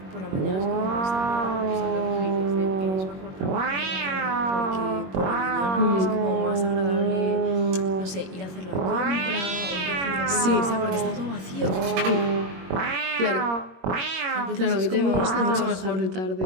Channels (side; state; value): left; late; 21 ms